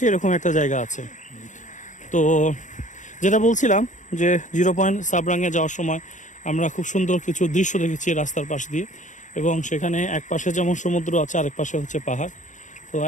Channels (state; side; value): late; right; 0.36 ms